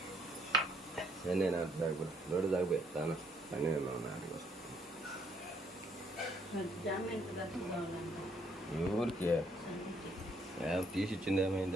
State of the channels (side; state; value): both; normal; correlation 0.68